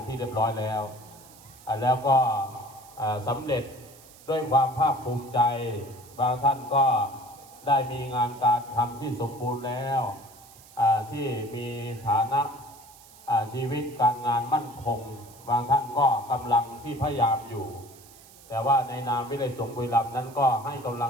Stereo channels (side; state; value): right; noise; hiss, 22 dB below the sound